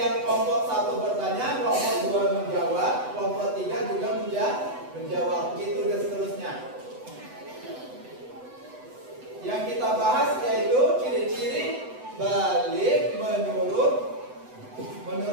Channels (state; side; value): late; left; 8.0 ms